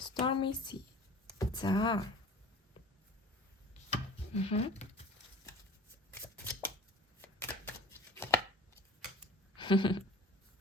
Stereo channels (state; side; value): normal; both; correlation 0.43